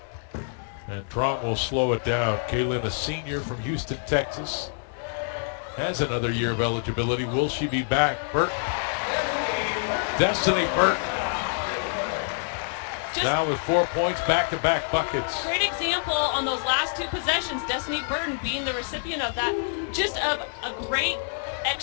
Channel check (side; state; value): right; silent; digital silence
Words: And Truong will slow it down. Kaylynne, a senior from Houston, Texas, has another year of eligibility. Will she be back? Burton. Destiny Burton. Now with 4 points, back-to-back buckets. Great example on those last 2 possessions. Destiny Burton being the recipient of that. Just of a great